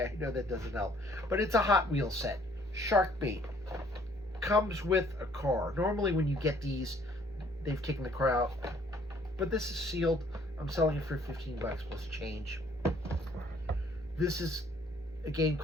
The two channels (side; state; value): both; normal; correlation 0.60